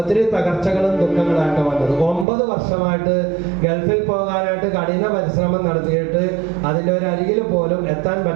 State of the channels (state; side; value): drops out; left; at 2.2 s